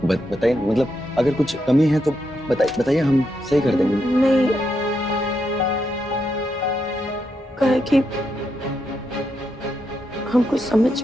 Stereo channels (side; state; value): both; normal; correlation 0.82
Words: बताइए, मतलब अगर कुछ कमी है तो बताइए, हम सही कर देंगे। नहीं, कहा कि हमको समझ